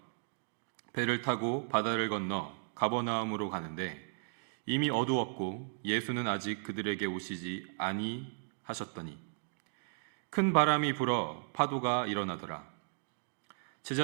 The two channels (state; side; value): silent; left; digital silence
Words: 배를 타고 바다를 건너 가버나움으로 가는데 이미 어두웠고 예수는 아직 그들에게 오시지 아니하셨더니 큰 바람이 불어 파도가 일어나더라.